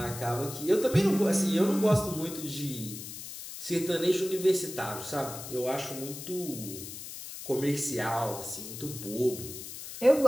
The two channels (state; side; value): noise; left; hiss, 10 dB below the sound